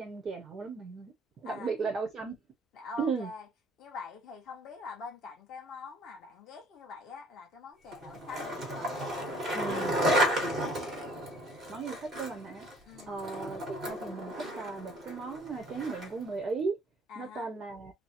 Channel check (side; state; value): both; normal; correlation 0.56